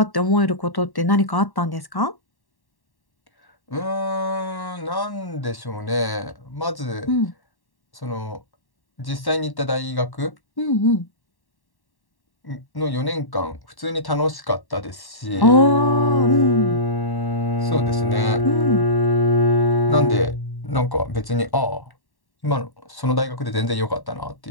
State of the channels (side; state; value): right; late; 1.1 ms